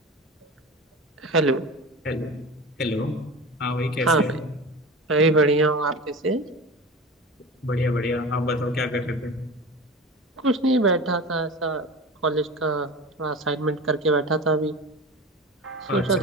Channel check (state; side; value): normal; both; correlation 0.31